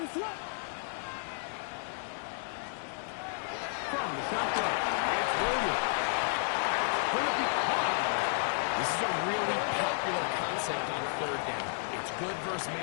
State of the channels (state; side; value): silent; right; digital silence